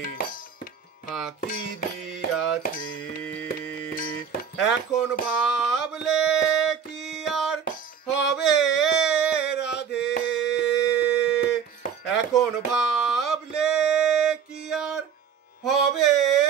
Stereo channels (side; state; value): left; quieter; 7.4 dB